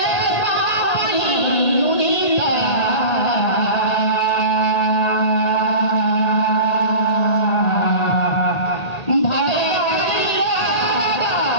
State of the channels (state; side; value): late; right; 1.8 ms